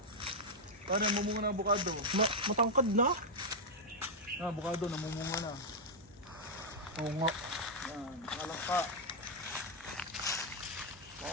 Pare, mumunga na avocado. Matangkad na. Avocado, namumunga na. Oo nga. Yan, nalangka.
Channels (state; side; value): normal; both; correlation -0.03